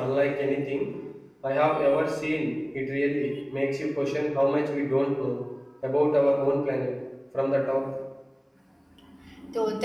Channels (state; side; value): identical; both; correlation 1.00